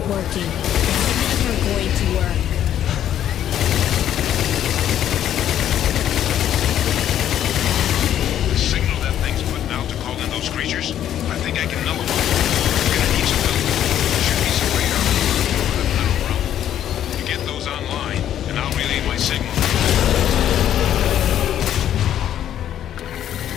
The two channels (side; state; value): right; quieter; 10.8 dB